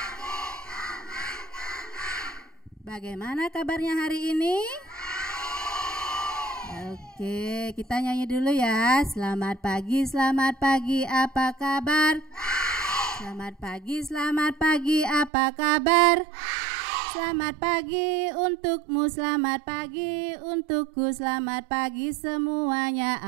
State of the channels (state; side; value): drops out; left; at 15.3 s